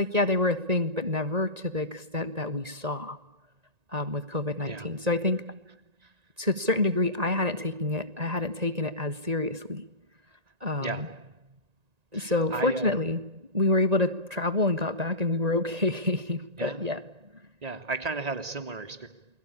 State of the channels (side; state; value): left; late; 1.9 ms